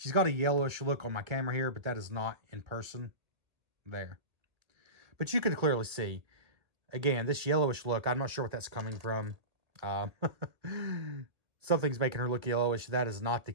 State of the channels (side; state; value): left; late; 1.9 ms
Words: got a yellowish look on my camera here, but that is not in person there. But you can clearly see, again, this yellowish look, I'm not sure what that's coming from. Something's making her look yellowish. That is not the